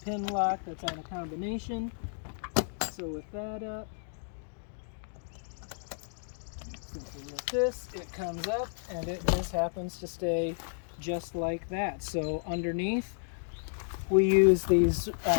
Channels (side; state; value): right; silent; digital silence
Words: pin lock that's on a combination. So with that up, simply with this, it comes up and it just happens to stay just like that. So underneath, we use these